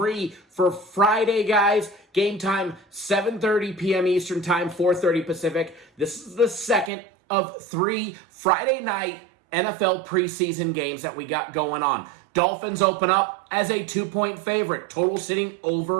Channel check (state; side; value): drops out; left; at 6.9 s